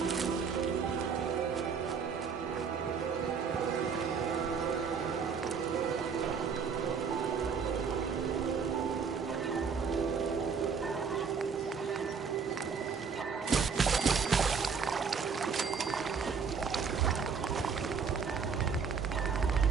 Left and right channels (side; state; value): left; quieter; 5.9 dB